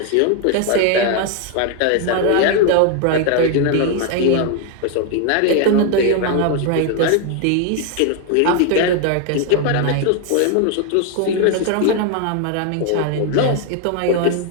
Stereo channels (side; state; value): both; different; correlation 0.01